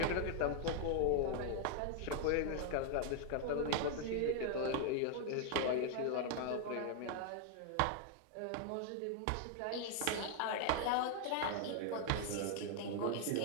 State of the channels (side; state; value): both; different; correlation 0.00